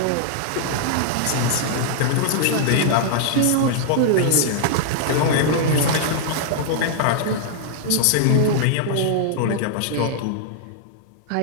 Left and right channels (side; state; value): both; different; correlation -0.01